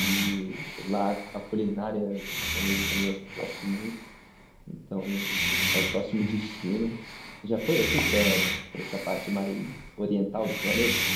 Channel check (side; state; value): both; identical; correlation 1.00